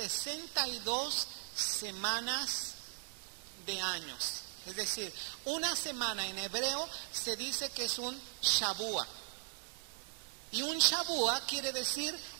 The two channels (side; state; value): left; silent; 52 dB below the other